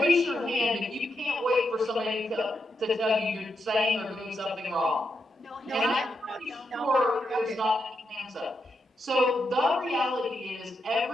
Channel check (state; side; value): normal; both; correlation 0.83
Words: your hand if you can't wait for somebody to tell you you're saying or doing something wrong. And I'm pretty sure there's not any hands up. So the reality is,